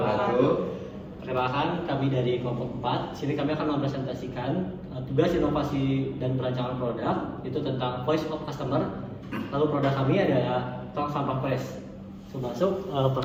Perkenalkan, kami dari kelompok 4. Sini kami akan mempresentasikan tugas inovasi dan perancangan produk itu tentang voice of customer. Lalu produk kami adalah tong sampah press. Masuk,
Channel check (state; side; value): identical; both; correlation 1.00